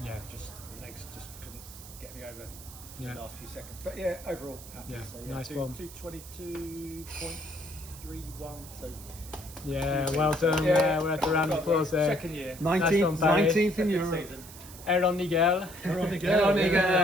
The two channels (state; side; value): noise; right; hiss, 16 dB below the sound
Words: Yeah. Just the legs just couldn't get me over Yeah. the last few seconds. But yeah, overall happy. Yeah, So, nice one. 222.31. So Yeah, well done. Yeah, we're at the round of applause there. second year. 19th in Europe. Season. Aaron Nigel.